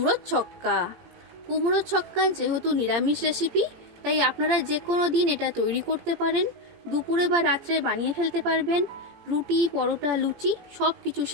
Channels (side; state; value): left; late; 17 ms